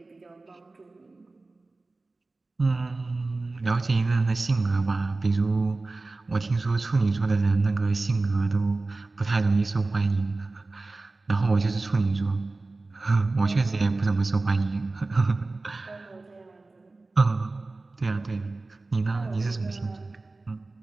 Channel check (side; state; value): left; quieter; 3.3 dB